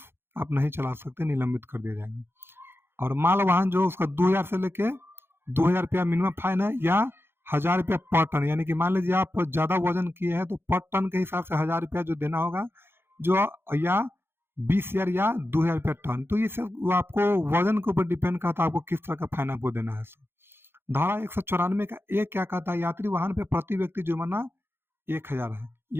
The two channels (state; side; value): late; left; 0.11 ms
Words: आप नहीं चला सकते, निलंबित कर दिया जाएगा। और माल वाहन जो उसका 2000 से लेके 2000 रुपया मिनिमम फाइन है या 1000 रुपया पर टन, यानी कि मान लीजिए आप ज़्यादा वजन किए हैं तो पर टन के हिसाब से 1000 रुपया जो देना होगा, जो या 20,000 या 2000 रुपया टन। तो ये सब वो आपको वजन के ऊपर डिपेंड करता है आपको किस तरह का फाइन आपको देना है। धारा 194 का एक क्या कहता है, यात्री वाहन पे प्रति व्यक्ति जुर्माना 1000 है,